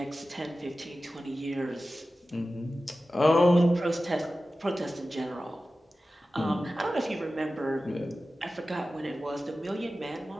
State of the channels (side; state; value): both; normal; correlation 0.95